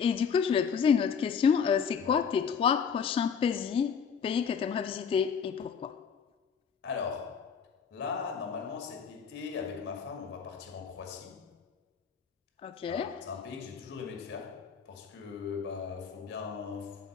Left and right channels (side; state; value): right; quieter; 6.7 dB